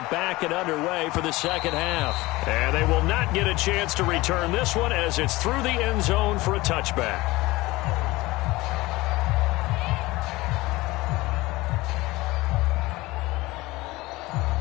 back and underway for the second half. And they will not get a chance to return this one as it's through the end zone for a touchback.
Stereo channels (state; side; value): quieter; right; 20.2 dB